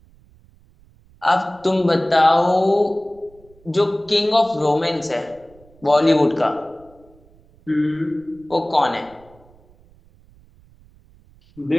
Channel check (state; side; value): noise; right; rumble, 28 dB below the sound